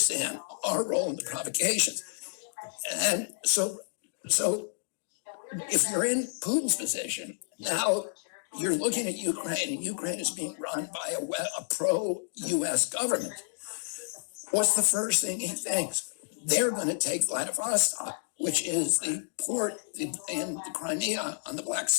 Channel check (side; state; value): right; silent; digital silence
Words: our role in the provocations. And so if you're in Putin's position, now you're looking at Ukraine, and Ukraine is being run by a pro-US government. What's the first thing he thinks? They're going to take Vladivostok, which is the port in the Crimea on the Black